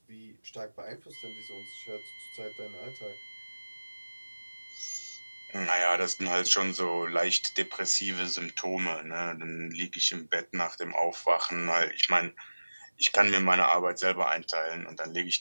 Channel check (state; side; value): inverted; both; correlation -1.00